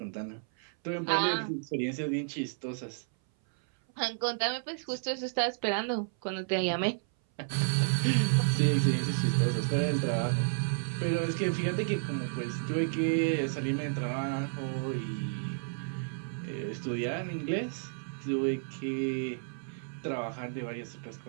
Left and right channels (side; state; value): left; silent; 57 dB below the other